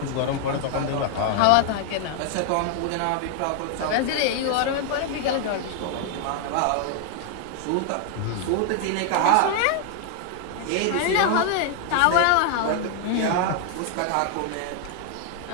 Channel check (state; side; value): different; both; correlation 0.00